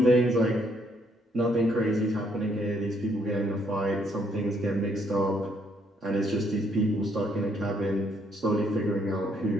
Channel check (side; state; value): both; normal; correlation 0.70